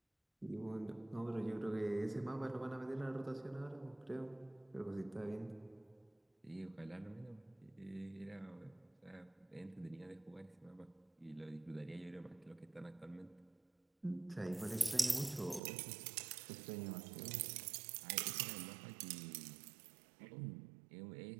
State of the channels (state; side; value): drops out; left; at 15.6 s